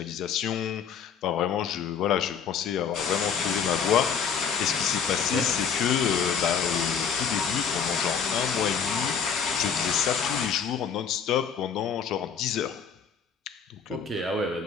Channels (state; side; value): quieter; right; 6.9 dB